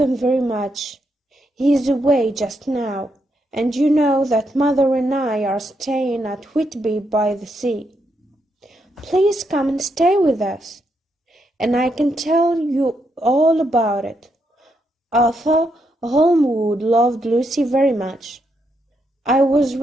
very much. He is away just now, and you know that Mother and I are staying at Whitby by the sea. Please come and stay with us, and I can tell you all about it. Arthur Holmwood loved Lucy very much. I was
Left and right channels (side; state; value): both; normal; correlation 0.79